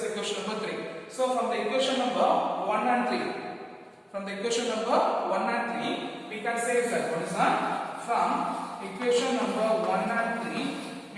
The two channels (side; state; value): both; identical; correlation 1.00